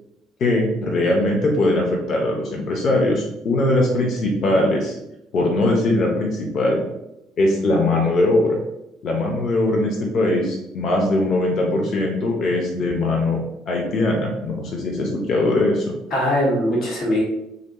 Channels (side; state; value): both; normal; correlation 0.68